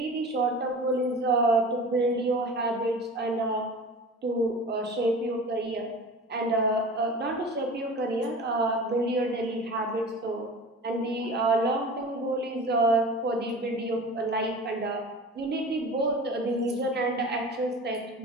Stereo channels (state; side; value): normal; both; correlation 0.37